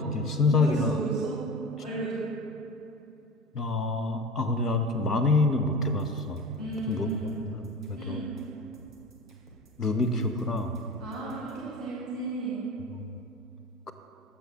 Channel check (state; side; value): normal; both; correlation 0.32